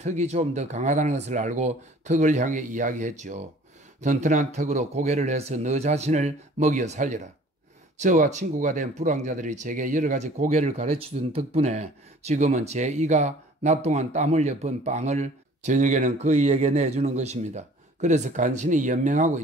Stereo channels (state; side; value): normal; both; correlation 0.51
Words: 좀 더 강하다는 것을 알고 턱을 향해 이야기했죠. 튼튼한 턱으로 고개를 해서 너 자신을 먹여 살려라. 저와 친구가 된 불황자들이 제게 여러 가지 고개를 가르쳐준 덕분에 지금은 제 이가 낮 동안 땀 흘려 번 빵을 저녁에는 그이에게 내주는 것입니다. 그래서 간신히 연명하고